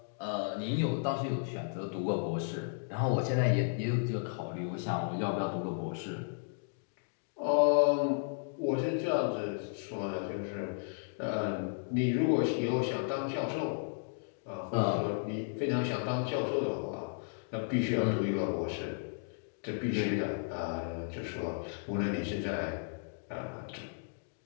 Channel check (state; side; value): silent; right; digital silence